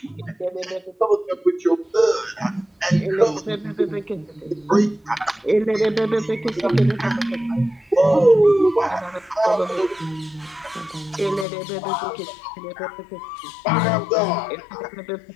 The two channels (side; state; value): right; drops out; at 11.5 s